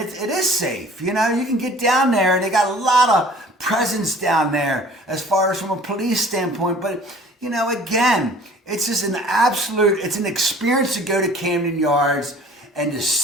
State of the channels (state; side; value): normal; both; correlation 0.50